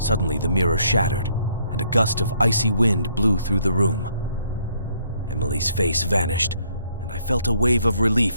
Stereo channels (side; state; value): both; inverted; correlation -0.68